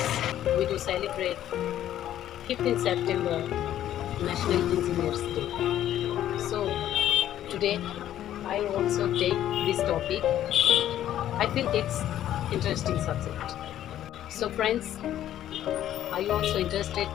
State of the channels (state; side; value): quieter; right; 11.9 dB